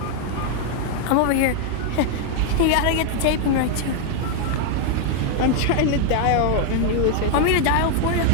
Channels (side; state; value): both; different; correlation 0.00